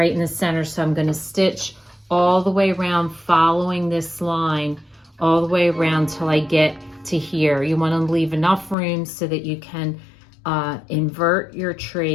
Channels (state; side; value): drops out; right; at 8.8 s